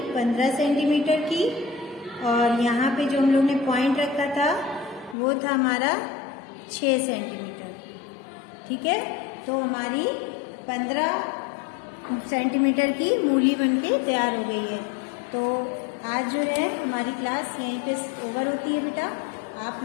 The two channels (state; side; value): drops out; right; at 5.2 s